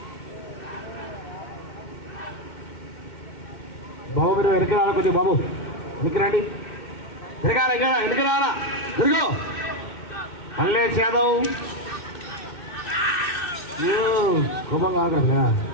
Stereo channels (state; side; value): late; right; 2.6 ms